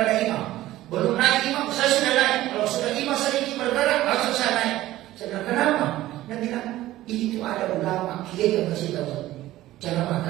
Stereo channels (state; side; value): quieter; left; 15.5 dB